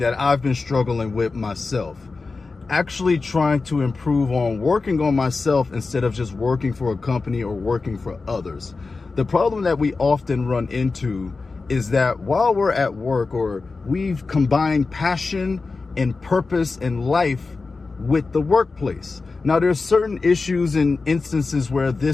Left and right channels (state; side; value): quieter; right; 4.0 dB